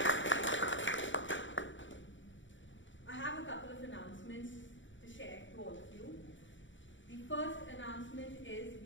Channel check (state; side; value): late; right; 0.55 ms